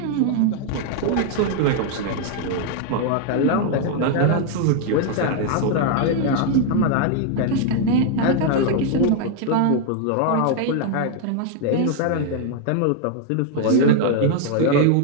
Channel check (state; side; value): different; both; correlation 0.00